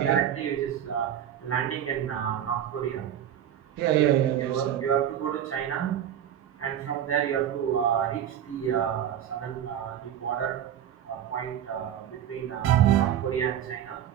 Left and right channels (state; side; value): quieter; left; 10.2 dB